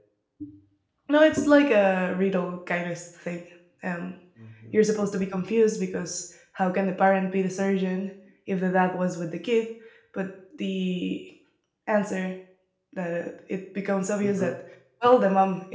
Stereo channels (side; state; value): both; identical; correlation 1.00